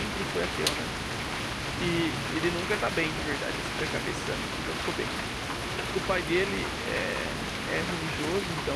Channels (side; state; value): both; identical; correlation 1.00